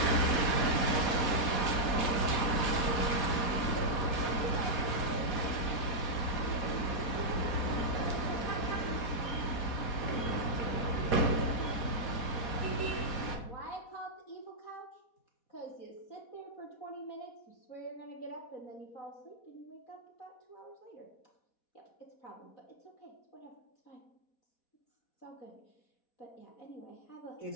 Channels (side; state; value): right; late; 4.1 ms